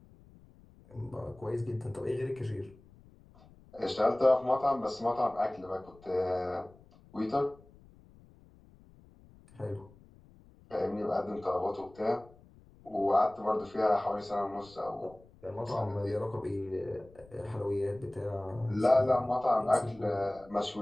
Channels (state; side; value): noise; left; rumble, 25 dB below the sound